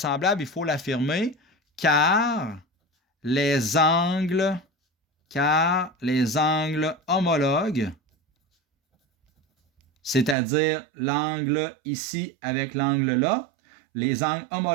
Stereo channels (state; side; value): drops out; left; at 10.4 s